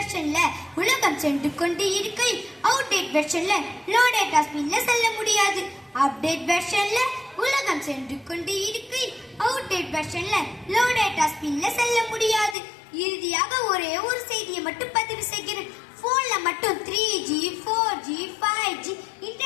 உலகம் சென்று கொண்டு இருக்கையில் அவுடேட் வெர்ஷன்ல லோ டேட்டா ஸ்பீட்ல செல்ல முடியாது. அப்டேட் வெர்ஷன்ல உலகம் சென்று கொண்டு இருக்கையில் அவுடேட் வெர்ஷன்ல லோ டேட்டா ஸ்பீட்ல செல்ல முடியாது. இறுதியாக ஒரே ஒரு செய்தியை மட்டும் பதிவு செய்கிறேன். போன்ல மட்டும் 3G, 4G, 5G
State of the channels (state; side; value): drops out; right; at 12.6 s